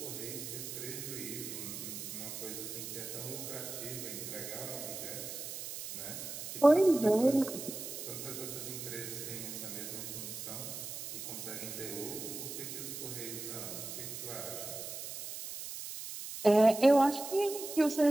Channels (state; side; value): noise; right; hiss, 8 dB below the sound